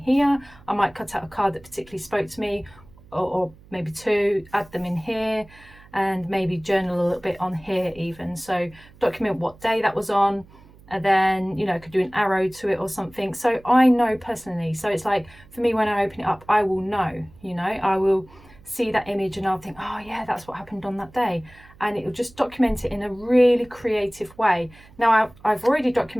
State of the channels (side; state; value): right; noise; hum, 24 dB below the sound